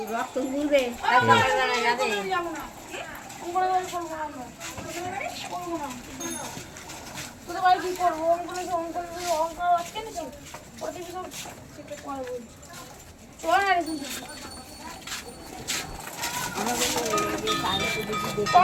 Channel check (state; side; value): identical; both; correlation 1.00